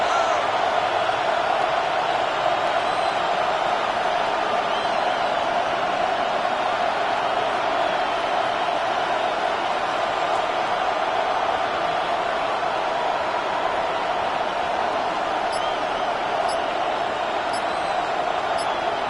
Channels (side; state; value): both; identical; correlation 1.00